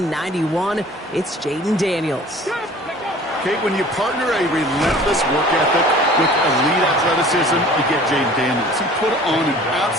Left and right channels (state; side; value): normal; both; correlation 0.47